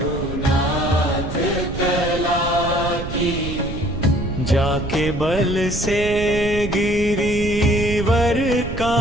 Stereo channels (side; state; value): right; noise; rumble, 7 dB below the sound